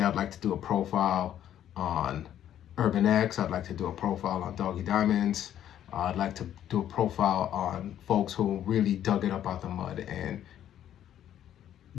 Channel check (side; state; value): right; quieter; 10.9 dB